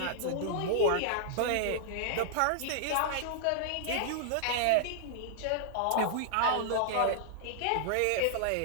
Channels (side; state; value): both; different; correlation -0.01